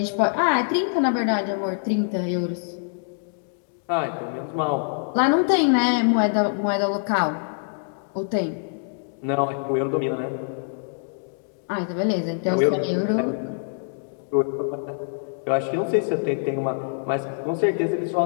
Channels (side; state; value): right; silent; digital silence